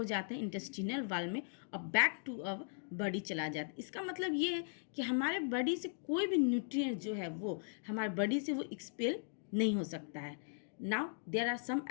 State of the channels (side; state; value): right; silent; digital silence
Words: जाते हैं इंटेस्टिनल वाल में और बैक टू अवर बॉडी चला जाता है। इसका मतलब ये है कि हमारे बॉडी से कोई भी न्यूट्रिएंट जो है वो हमारे बॉडी से वो एक्सपेल नहीं हो सकता है। Now there are some